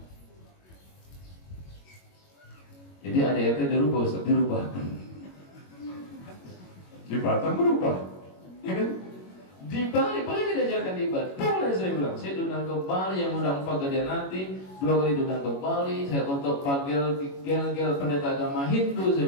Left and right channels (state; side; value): late; right; 21 ms